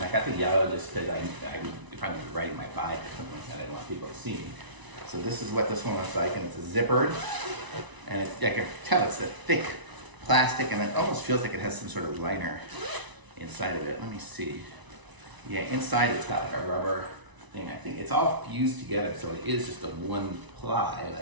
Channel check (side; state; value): left; late; 1.0 ms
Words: I got the yellow just because if I'm riding my bike or something like that, I don't want people to see me. So this is what this one looks like, and it's a zippered, and I can tell it's a thick plastic, and it almost feels like it has some sort of liner inside of it. Let me see. Yeah, inside it's got like a rubber thing. I think it's all fused together, so it is just a one